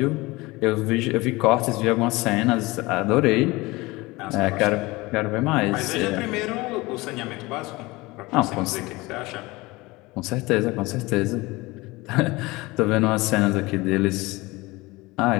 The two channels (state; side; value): quieter; right; 22.0 dB